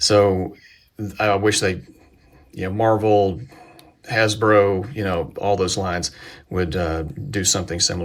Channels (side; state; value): both; identical; correlation 1.00